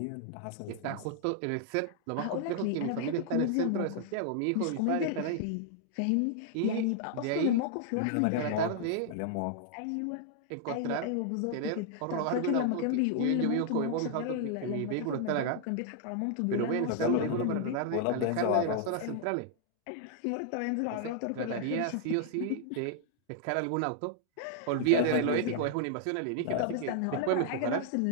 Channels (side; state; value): both; different; correlation -0.01